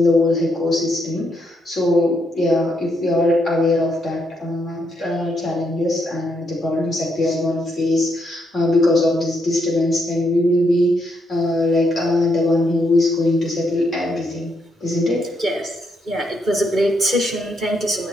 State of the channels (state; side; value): normal; both; correlation 0.77